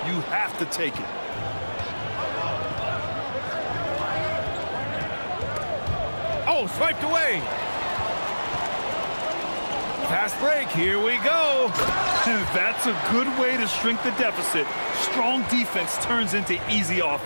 you have to take it. Oh, swiped away. Fast break. Here we go. That's a good way to shrink the deficit. Strong defense turns into easy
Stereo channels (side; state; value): both; inverted; correlation -1.00